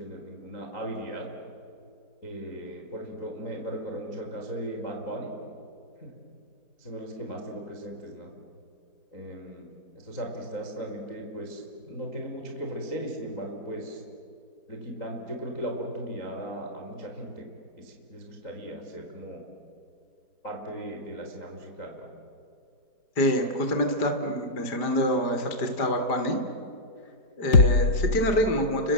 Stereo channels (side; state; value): right; late; 5.0 ms